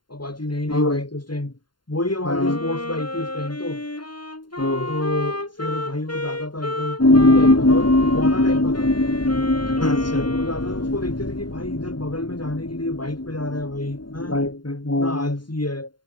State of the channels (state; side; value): late; right; 0.71 ms